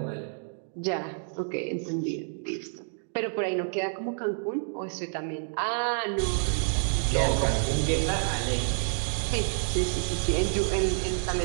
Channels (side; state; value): left; silent; digital silence